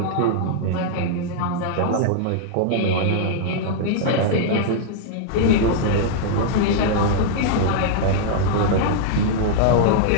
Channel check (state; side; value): different; both; correlation -0.01